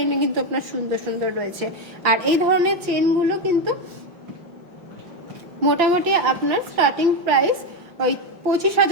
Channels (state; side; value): late; left; 5.9 ms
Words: কিন্তু আপনার সুন্দর সুন্দর রয়েছে। আর এই ধরনের চেনগুলো কিন্তু মোটামুটি আপনার স্টার্টিং প্রাইস ওই